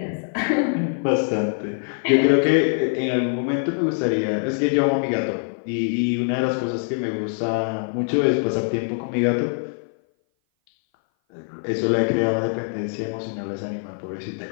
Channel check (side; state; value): right; silent; 58 dB below the other